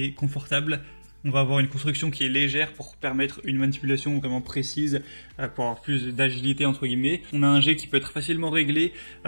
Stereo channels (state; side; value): inverted; both; correlation -1.00